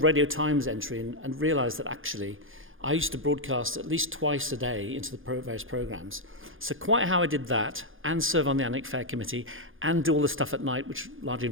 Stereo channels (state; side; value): late; left; 0.59 ms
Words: Radio Times entry and realised that actually I used to broadcast at least twice a day into the various programmes. So quite how I did that, and serve on the Alnwick Fair committee, and do all the stuff at night, which largely